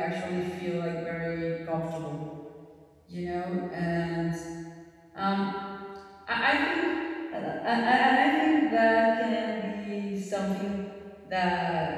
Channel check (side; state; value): both; identical; correlation 1.00